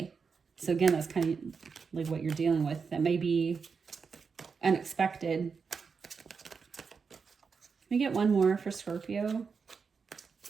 So again, that's kind of like what you're dealing with. That may be unexpected. Let me get one more for Scorpio.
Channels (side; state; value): left; quieter; 5.5 dB